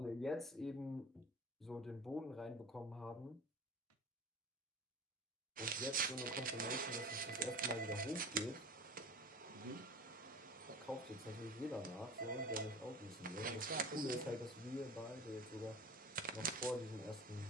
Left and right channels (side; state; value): both; normal; correlation 0.38